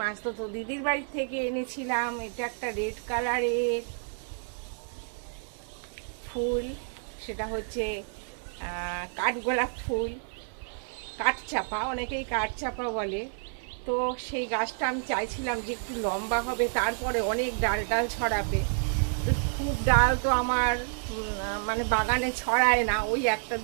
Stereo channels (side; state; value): left; silent; 58 dB below the other